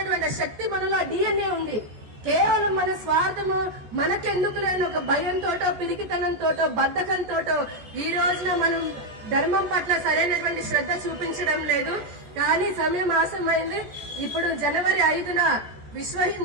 శక్తి మనలో డిఎన్ఏ ఉంది. కేవలం మన స్వార్థము, మనకెందుకు లేని ఒక భయంతోటో, పిరికితనంతోటో, బద్ధకంతోటో ఈ రోజున మనం ధర్మం పట్ల సరైనటువంటి శ్రద్ధ చూపించడం లేదు. కానీ సమయం ఆసమైంది. ఇప్పుడు జనవరి 5న విశ్వ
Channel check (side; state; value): left; late; 14 ms